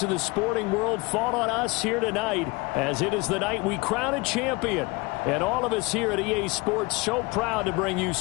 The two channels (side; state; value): right; quieter; 25.7 dB